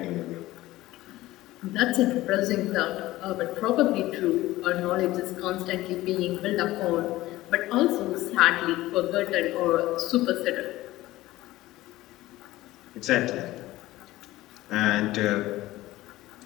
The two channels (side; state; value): right; quieter; 17.0 dB